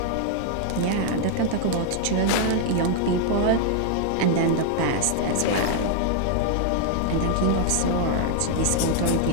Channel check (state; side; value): different; both; correlation 0.00